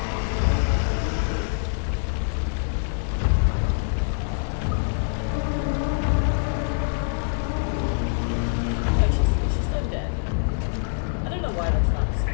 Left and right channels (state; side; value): silent; right; digital silence